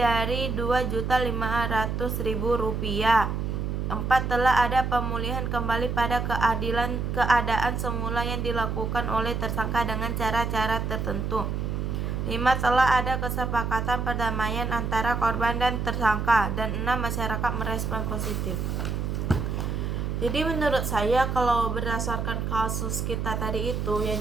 Rp2.500.000. 4. Telah ada pemulihan kembali pada keadaan semula yang dilakukan oleh tersangka dengan cara-cara tertentu. 5. Telah ada kesepakatan perdamaian antara korban dan tersangka. Dan 6. Masyarakat merespon positif. Jadi menurut saya kalau berdasarkan kasus kita tadi itu, yang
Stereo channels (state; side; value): noise; right; hum, 2 dB below the sound